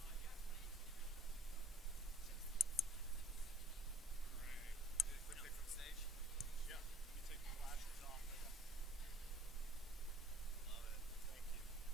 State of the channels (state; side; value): normal; both; correlation 0.54